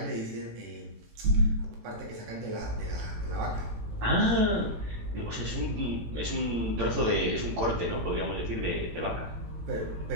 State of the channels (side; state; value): left; late; 18 ms